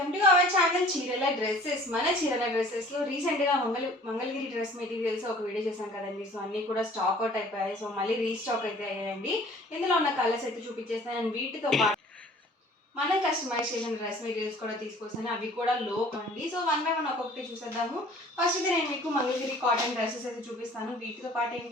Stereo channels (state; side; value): normal; both; correlation 0.50